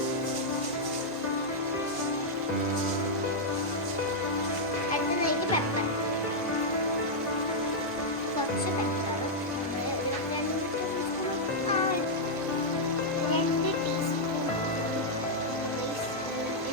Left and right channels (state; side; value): normal; both; correlation -0.05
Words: അടുത്തതായിട്ട് പെപ്പർ, കുറച്ച് പെപ്പർ, 2 ടീസ്പൂൺ.